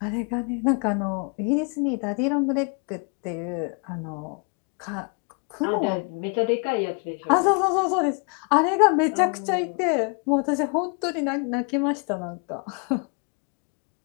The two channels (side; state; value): right; quieter; 36.7 dB